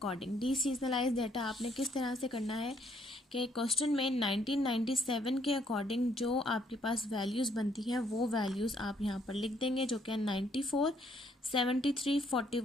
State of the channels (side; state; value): both; normal; correlation 0.68